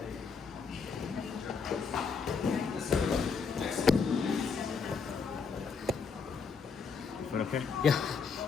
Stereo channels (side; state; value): right; quieter; 5.3 dB